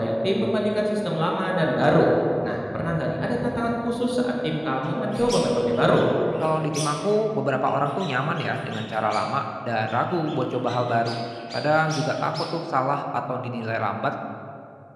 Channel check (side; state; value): both; identical; correlation 1.00